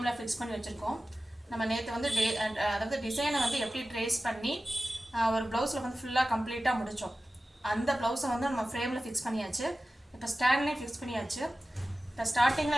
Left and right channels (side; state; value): both; normal; correlation 0.95